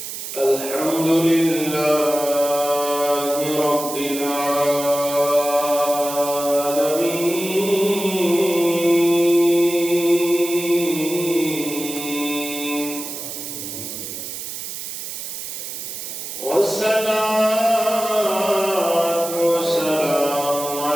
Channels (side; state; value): right; noise; hiss, 8 dB below the sound